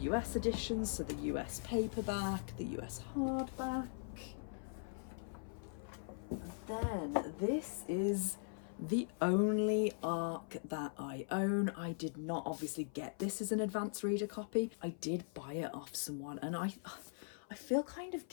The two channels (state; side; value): silent; right; 51 dB below the other